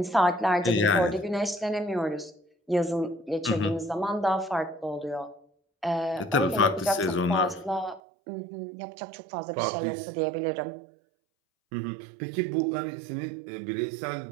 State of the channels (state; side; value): drops out; left; at 8.0 s